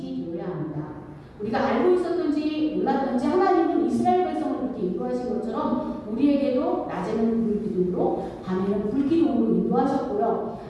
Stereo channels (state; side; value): identical; both; correlation 1.00